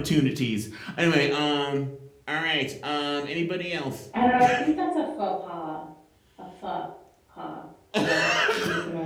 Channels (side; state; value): both; identical; correlation 1.00